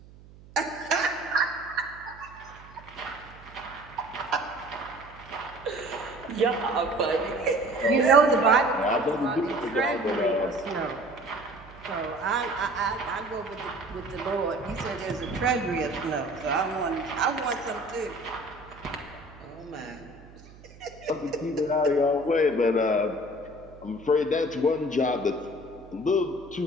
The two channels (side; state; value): right; noise; hum, 21 dB below the sound